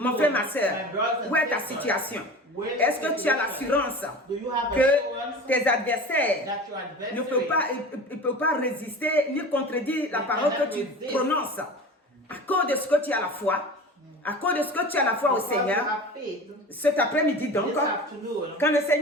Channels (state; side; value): normal; both; correlation 0.35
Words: frère, ma soeur, où est ta situation? Est-ce que tu as l'assurance que tes adversaires ne peuvent pas résister ni contredire la parole que tu prononces à cause de ce que tu as la foi? À cause de ce que tu as la foi au Seigneur, cet après-midi donc, quand le